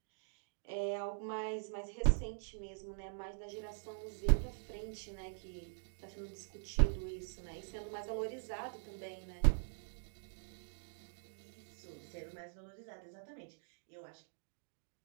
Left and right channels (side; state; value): left; silent; digital silence